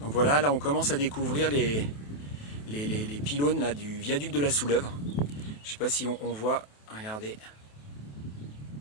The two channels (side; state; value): right; late; 28 ms